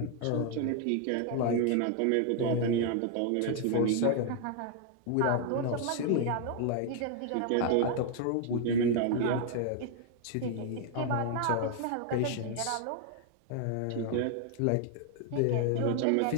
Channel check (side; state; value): both; different; correlation 0.00